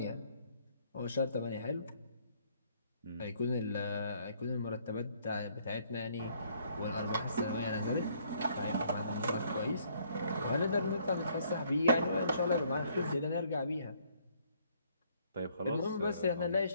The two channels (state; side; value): inverted; both; correlation -0.65